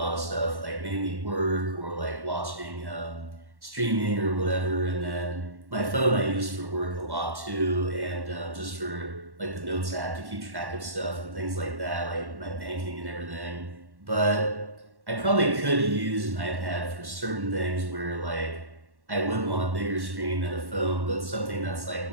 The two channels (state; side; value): late; left; 1.1 ms